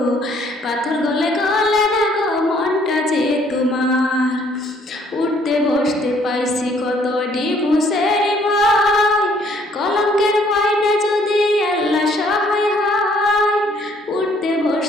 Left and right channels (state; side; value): normal; both; correlation 0.63